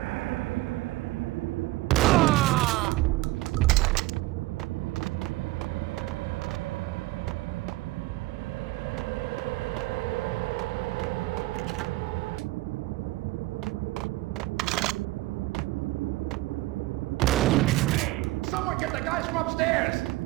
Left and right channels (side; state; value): left; quieter; 18.7 dB